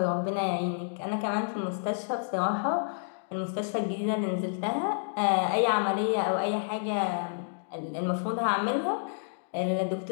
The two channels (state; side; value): silent; right; digital silence